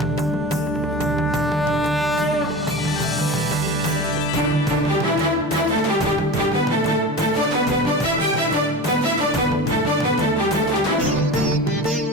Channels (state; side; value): normal; both; correlation 0.31